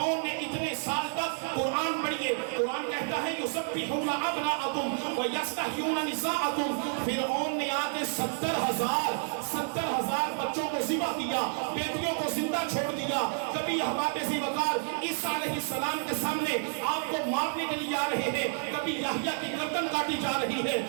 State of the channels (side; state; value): left; silent; 58 dB below the other